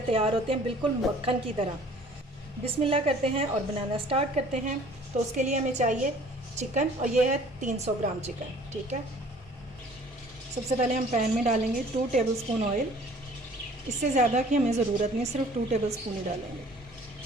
तैयार होते हैं, बिल्कुल मक्खन की तरह। बिस्मिल्लाह करते हैं और बनाना स्टार्ट करते हैं। तो उसके लिए हमें चाहिए चिकन, और ये है 300 ग्राम चिकन। ठीक है, सबसे पहले हम पैन में डालेंगे 2 टेबलस्पून ऑयल। इससे ज़्यादा की हमें ज़रूरत नहीं, सिर्फ 2 टेबलस्पून ही डालेंगे।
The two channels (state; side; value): normal; both; correlation 0.52